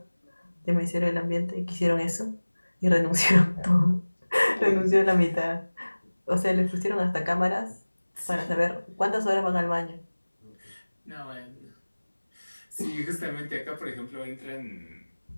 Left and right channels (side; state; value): both; inverted; correlation -1.00